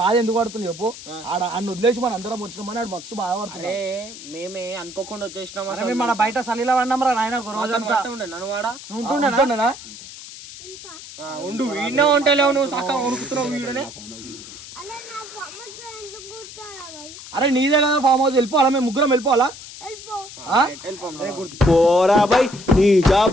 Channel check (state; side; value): noise; left; hiss, 14 dB below the sound